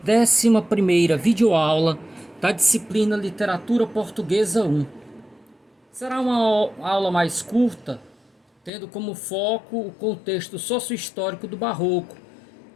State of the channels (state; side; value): drops out; right; at 8.7 s